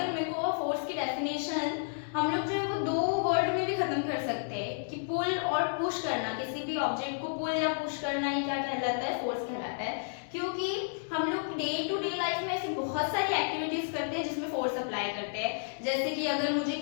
मेरे को फोर्स की डेफिनेशन हम लोग जो है वो दो वर्ड में भी खत्म कर सकते हैं कि पुल और पुश करना, किसी भी ऑब्जेक्ट को पुल या पुश करना ही क्या कहलाता है, फोर्स कहलाता है। क्योंकि हम लोग डे टू डे लाइफ में ऐसे बहुत सारी एक्टिविटीज करते हैं जिसमें फोर्स अप्लाई करते हैं। जैसे कि अगर मुझे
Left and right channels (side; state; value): right; silent; digital silence